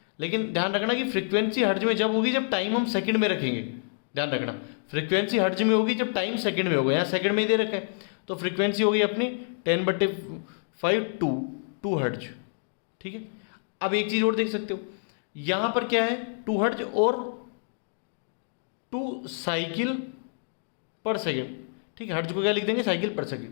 लेकिन ध्यान रखना कि फ्रीक्वेंसी हर्ट्ज में जब होगी जब टाइम हम सेकंड में रखेंगे। ध्यान रखना, फ्रीक्वेंसी हर्ट्ज में होगी जब टाइम सेकंड में होगा। यहाँ सेकंड में ही दे रखा है, तो फ्रीक्वेंसी होगी अपनी 10/5 2 हर्ट्ज। ठीक है, अब एक चीज और देख सकते हो, यहां पर क्या है? 2 हर्ट्ज और 2 साइकिल पर सेकेंड। ठीक है, हर्ट्ज को क्या लिख देंगे? साइकिल पर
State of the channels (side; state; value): right; silent; digital silence